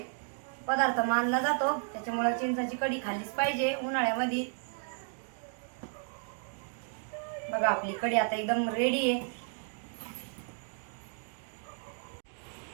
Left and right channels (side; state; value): left; silent; 56 dB below the other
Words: पदार्थ मानला जातो. त्याच्यामुळे चिंचेची कढी खाल्लीच पाहिजे उन्हाळ्यामध्ये. बघा आपली कढी आता एकदम रेडी आहे.